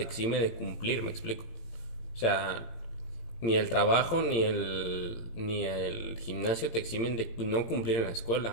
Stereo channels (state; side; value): late; right; 18 ms